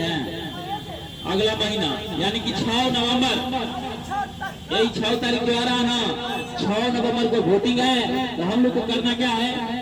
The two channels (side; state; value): both; identical; correlation 1.00